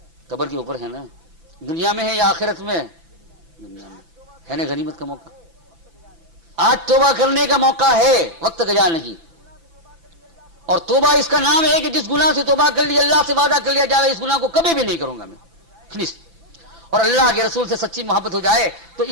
قبر کے اوپر ہے نا. دنیا میں ہے یا آخرت میں؟ دنیا میں ہے نا. غنیمت کا موقع آج توبہ کرنے کا موقع ہے، وقت گزار نہیں. اور توبہ اس کا نام ہے کہ جس گناہ سے توبہ کر لی، اللہ سے وعدہ کر لیا جائے اس گناہ کو کبھی بھی نہیں کروں گا میں، فنش. اور اللہ کے رسول سے سچی محبت ہو جائے تو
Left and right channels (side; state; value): left; late; 6.0 ms